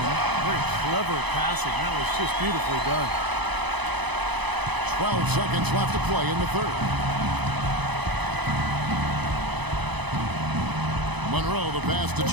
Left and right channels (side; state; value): left; late; 1.0 ms